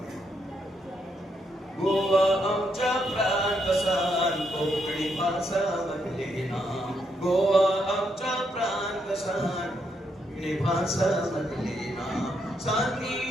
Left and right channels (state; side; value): normal; both; correlation 0.78